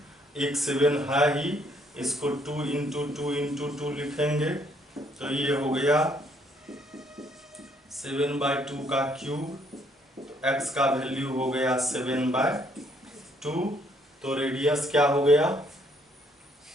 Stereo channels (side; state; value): both; normal; correlation 0.68